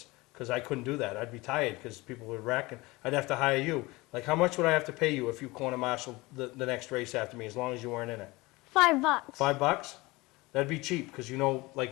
because I couldn't do that. I'd be tired because people would wreck, and I'd have to hire you. Like, how much would I have to pay you if you corner marshal the next race after me, as long as you weren't in it? $5. $5? That'd be cheap, because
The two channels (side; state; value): right; quieter; 22.2 dB